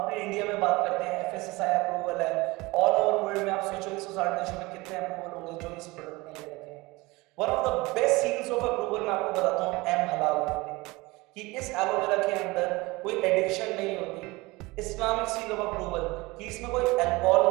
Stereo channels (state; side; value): quieter; left; 22.5 dB